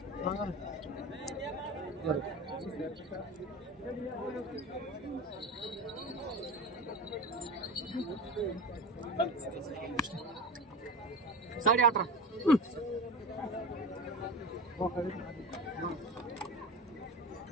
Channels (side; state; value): both; normal; correlation 0.30